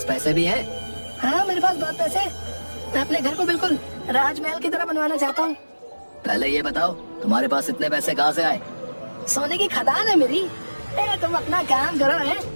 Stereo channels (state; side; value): inverted; both; correlation -1.00